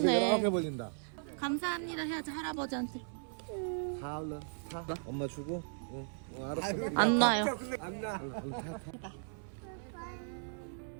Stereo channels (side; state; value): left; silent; 53 dB below the other